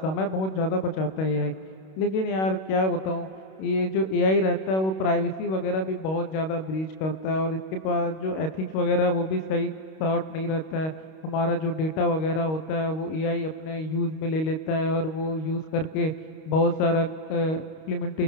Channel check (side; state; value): right; late; 32 ms